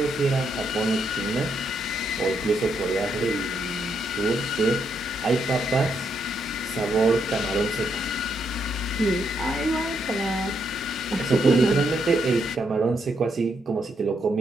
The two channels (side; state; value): both; normal; correlation 0.77